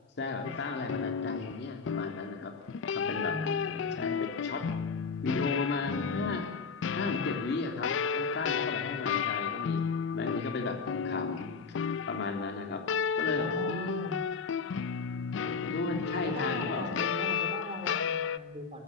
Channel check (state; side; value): quieter; right; 5.0 dB